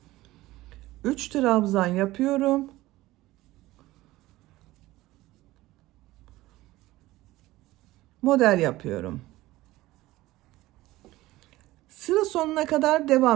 3 trabzan yapıyorum. Model yapıyorum. Sıra sonuna kadar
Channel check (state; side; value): quieter; left; 17.7 dB